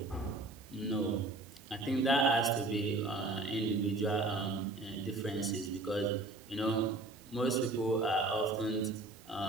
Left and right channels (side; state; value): left; quieter; 3.1 dB